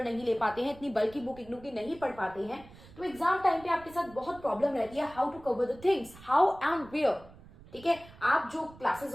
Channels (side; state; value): right; noise; rumble, 21 dB below the sound